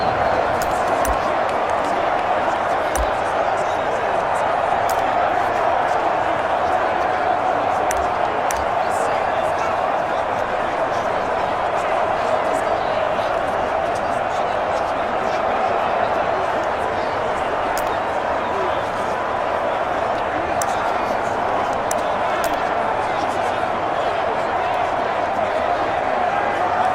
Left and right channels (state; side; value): identical; both; correlation 1.00